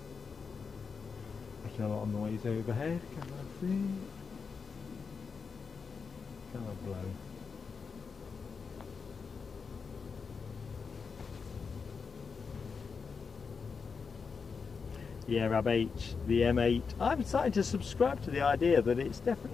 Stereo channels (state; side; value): quieter; right; 5.4 dB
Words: making a lot of noise overhead. Can I see? Can I blow? Yeah, Rab H, the M8. I'm starting to subscribe to the idea that it's